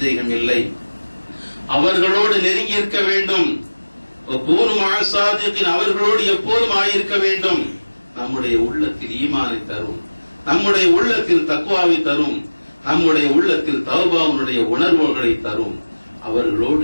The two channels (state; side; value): inverted; both; correlation -1.00